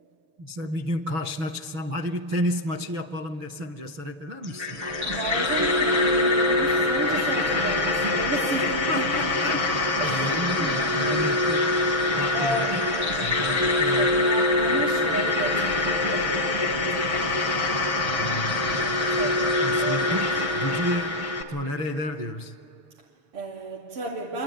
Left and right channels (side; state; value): left; late; 6.9 ms